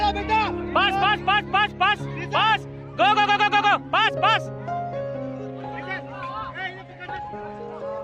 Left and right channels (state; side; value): identical; both; correlation 1.00